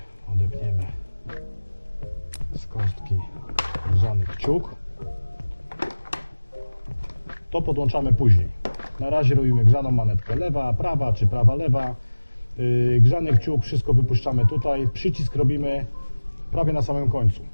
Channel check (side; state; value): both; inverted; correlation -1.00